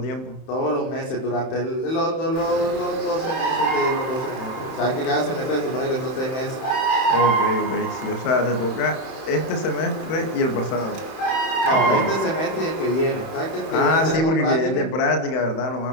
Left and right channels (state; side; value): late; right; 31 ms